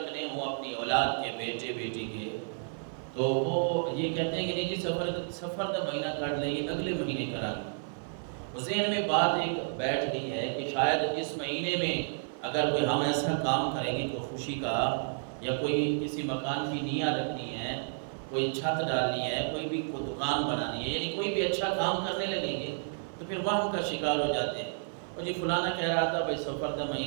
ہوں اپنی اولاد کے، بیٹے بیٹی کے، تو وہ یہ کہتے ہیں کہ نہیں جی سفر کا مہینہ کاٹ لیں، یہ اگلے مہینے کرا گے۔ ذہن میں بات ایک بیٹھ گئی ہے کہ شاید اس مہینے میں اگر کوئی ہم ایسا کام کریں گے کوئی خوشی کا، یا کوئی کسی مکان کی نیاں رکھنی ہے، کوئی چھت ڈالنی ہے، کوئی بھی کوئی دکان بنانی ہے، یعنی کوئی بھی اچھا کام کرنے لگیں گے تو پھر وہم کا شکار ہو جاتے ہیں۔ اور جی فلانا کہہ رہا تھا بھائی سفر کا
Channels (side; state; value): left; silent; digital silence